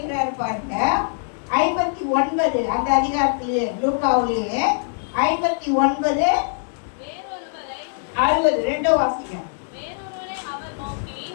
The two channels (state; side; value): silent; right; digital silence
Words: பாருங்க, 59 அந்த அதிகாரத்திலே லூக்காவிலே 59 60 ரெண்டோ வாசிங்க.